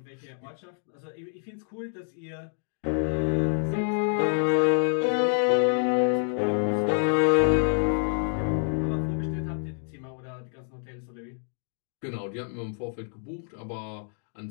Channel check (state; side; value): silent; right; 56 dB below the other